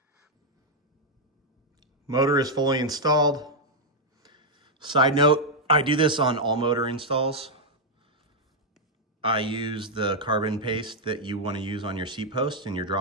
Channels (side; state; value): both; normal; correlation -0.02